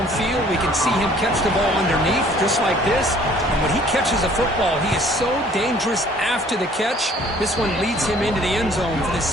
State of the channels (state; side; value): normal; both; correlation 0.56